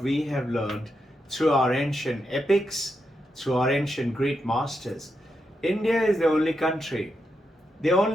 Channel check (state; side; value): normal; both; correlation 0.84